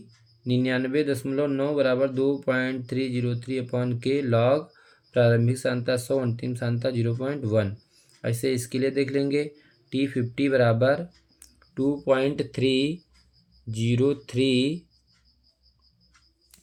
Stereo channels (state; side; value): identical; both; correlation 1.00